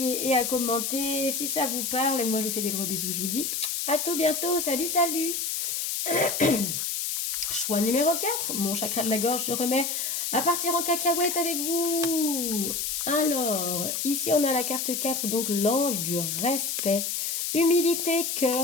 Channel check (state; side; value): noise; left; hiss, 1 dB below the sound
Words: et à commenter si ça vous parle. Et moi, je vous fais des gros bisous. Je vous dis à tout bientôt. Salut, salut. Choix numéro 4. Mon chakra de la gorge se remet à partir en cacahuète avec vous. Alors, ici on a la carte 4, donc l'ange du respect. Humilité,